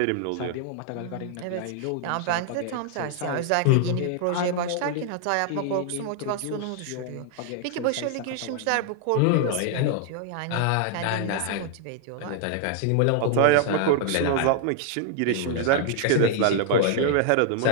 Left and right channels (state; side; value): different; both; correlation 0.00